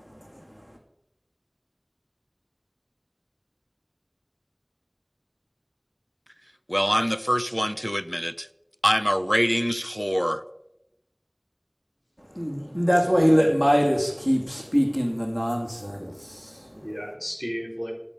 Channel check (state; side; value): identical; both; correlation 1.00